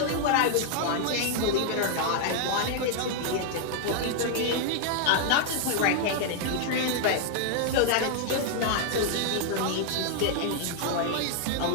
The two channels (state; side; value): different; both; correlation 0.00